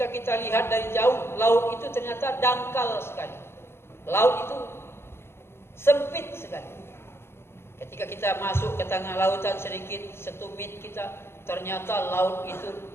kita lihat dari jauh, laut itu ternyata dangkal sekali. Laut itu sempit sekali. Ketika kita masuk ke tengah lautan sedikit, setumit kita, ternyata laut itu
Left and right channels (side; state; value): right; late; 0.12 ms